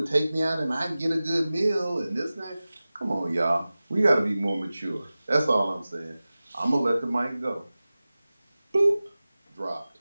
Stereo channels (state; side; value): inverted; both; correlation -0.97